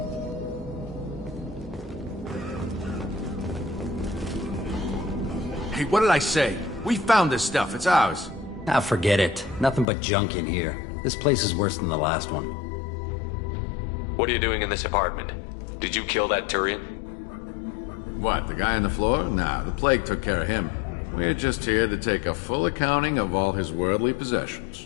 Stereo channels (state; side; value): drops out; right; at 9.9 s